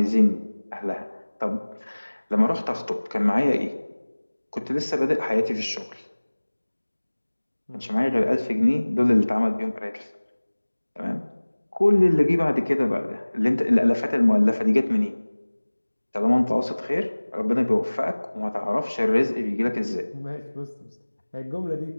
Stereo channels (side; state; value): both; inverted; correlation -1.00